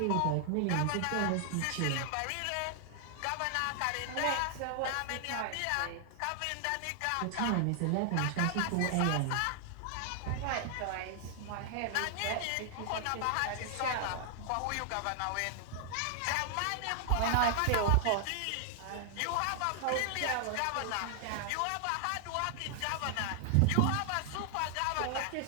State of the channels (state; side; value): different; both; correlation 0.00